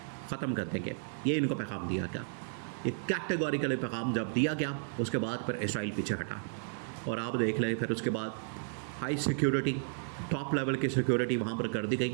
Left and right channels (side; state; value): left; silent; 56 dB below the other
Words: ख़त्म कर देंगे। ये इनको पैगाम दिया गया। ये कैटेगोरिकल पैगाम जब दिया गया, उसके बाद फिर इसराइल पीछे हटा। और आप देख लें, फिर उसके बाद हाई सिक्योरिटी, टॉप लेवल की सिक्योरिटी वहाँ पर कर दी